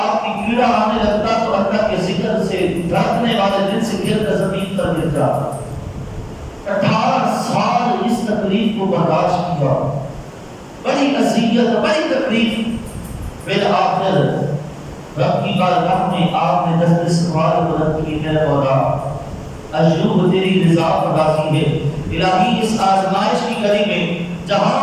کی کیڑا آنے لگتا تو اللہ کے ذکر سے دھڑکنے والے دل سے گر کر زمین پر گر جاتا. 18 سال اس تکلیف کو برداشت کیا، بڑی اذیت، بڑی تکلیف. بالآخر رب کی بارگاہ میں آپ نے دست سوال بلند کی، میرے مولا ایوب تیری رضا پر راضی ہے، الہی اس آزمائش کی گھڑی میں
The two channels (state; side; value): identical; both; correlation 1.00